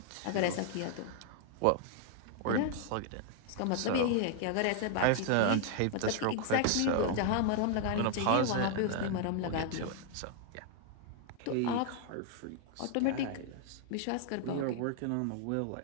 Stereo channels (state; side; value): different; both; correlation 0.00